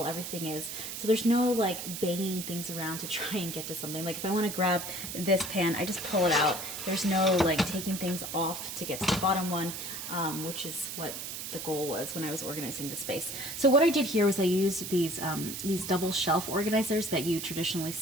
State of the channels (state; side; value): noise; right; hiss, 7 dB below the sound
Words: everything is. So there's no like banging things around to try and get to something. Like if I want to grab this pan, I just pull it out. There's no like taking things off to get to the bottom one, which is what the goal was when I was organizing the space. So what I did here was I used these double shelf organizers that you traditionally